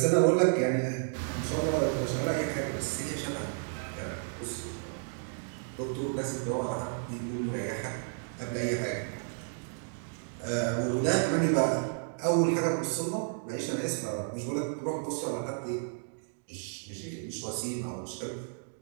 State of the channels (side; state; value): left; silent; digital silence